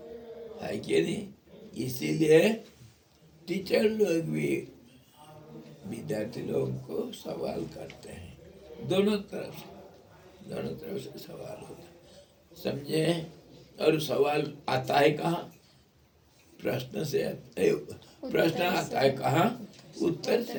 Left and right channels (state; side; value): identical; both; correlation 1.00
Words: है कि नहीं? इसीलिए टीचर लोग भी विद्यार्थी लोगों को सवाल करते हैं, दोनों तरफ से सवाल होता है, समझे? और सवाल आता है कहाँ? प्रश्न से। प्रश्न आता है कहाँ? उत्तर से